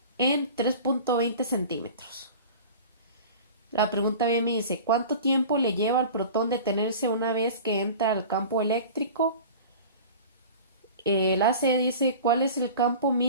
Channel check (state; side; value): inverted; both; correlation -0.38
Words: en 3.20 centímetros. La pregunta bien me dice: ¿cuánto tiempo le lleva al protón detenerse una vez que entra al campo eléctrico? El AC dice: ¿cuál es el campo